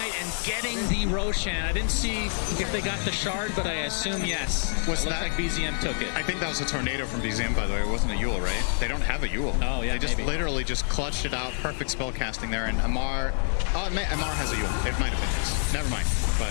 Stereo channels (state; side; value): silent; right; digital silence